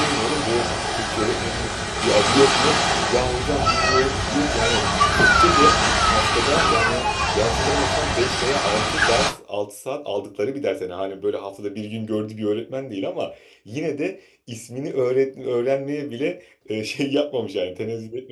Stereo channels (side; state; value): both; identical; correlation 1.00